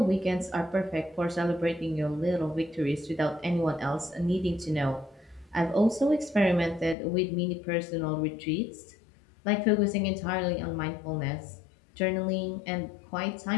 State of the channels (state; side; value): drops out; right; at 7.0 s